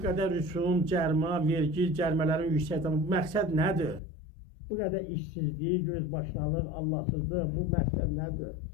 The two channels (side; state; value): right; drops out; at 4.0 s